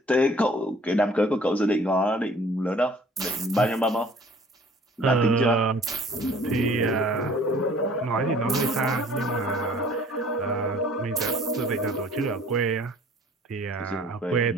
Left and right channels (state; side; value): normal; both; correlation 0.52